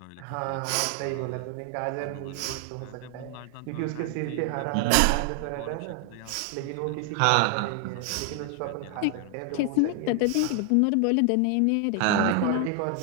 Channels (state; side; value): different; both; correlation 0.00